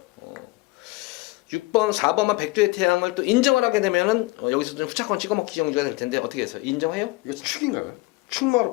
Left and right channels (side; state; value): right; quieter; 22.2 dB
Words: 6번, 4번만 백두의 태양을 또 인정을 하게 되면은 여기서 좀 후차권 찍어먹기 경주가 될 텐데 어떻게 해서 인정해요? 이거 축인가요? 축마로